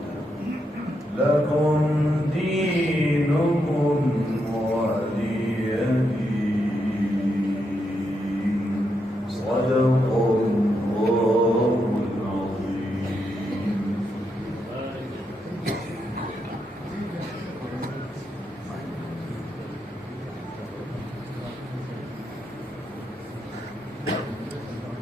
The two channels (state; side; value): normal; both; correlation 0.82